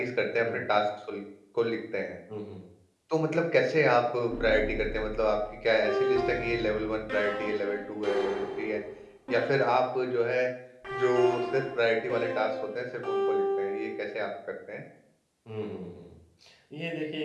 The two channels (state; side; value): identical; both; correlation 1.00